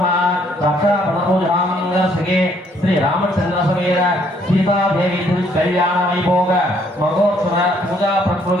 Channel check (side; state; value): both; normal; correlation 0.66